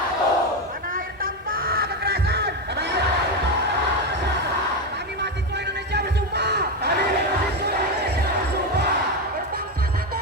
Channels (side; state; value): both; normal; correlation 0.11